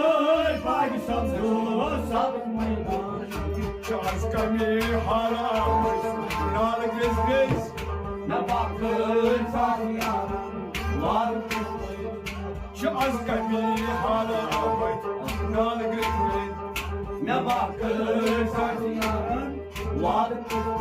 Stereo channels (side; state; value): both; identical; correlation 1.00